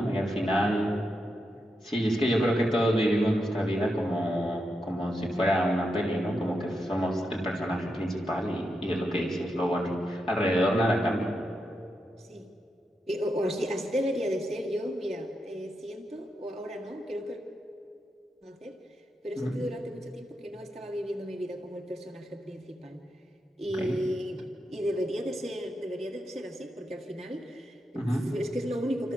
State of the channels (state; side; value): normal; both; correlation 0.86